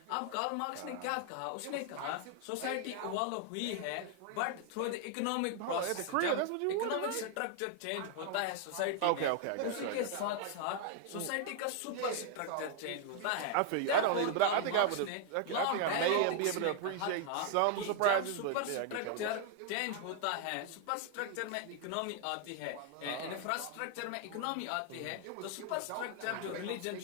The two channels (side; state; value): both; different; correlation 0.00